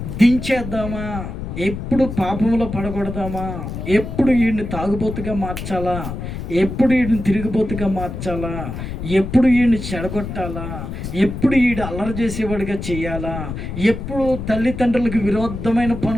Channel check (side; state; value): left; noise; rumble, 7 dB below the sound